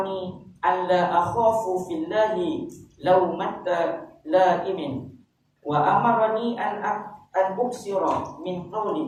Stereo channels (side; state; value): both; identical; correlation 1.00